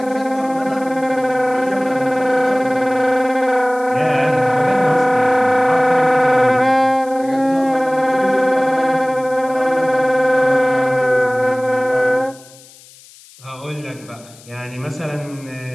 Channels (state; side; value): noise; left; hiss, 24 dB below the sound